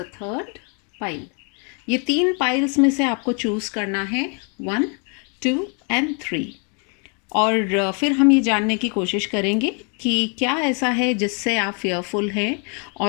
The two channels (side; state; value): right; quieter; 38.1 dB